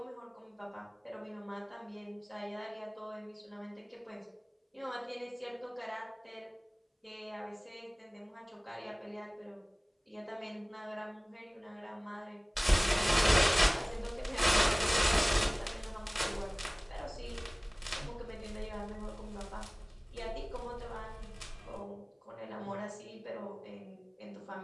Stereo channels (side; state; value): both; identical; correlation 1.00